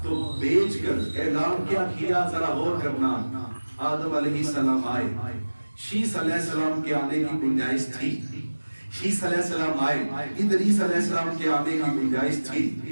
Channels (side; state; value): both; inverted; correlation -1.00